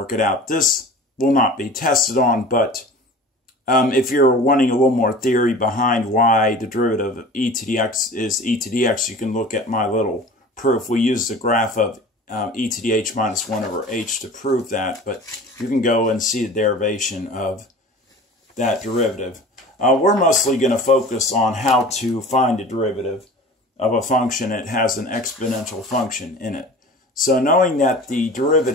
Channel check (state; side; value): normal; both; correlation 0.40